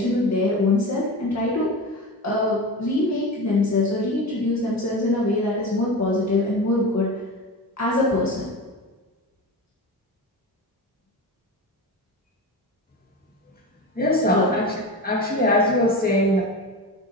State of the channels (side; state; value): both; normal; correlation 0.26